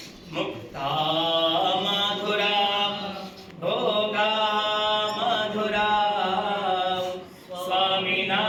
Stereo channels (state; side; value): identical; both; correlation 1.00